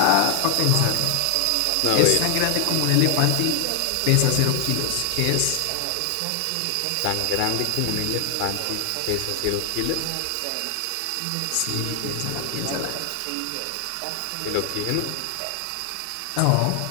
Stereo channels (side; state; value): both; different; correlation 0.00